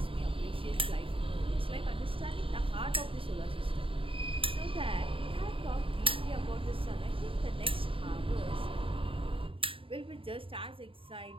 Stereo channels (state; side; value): late; left; 0.26 ms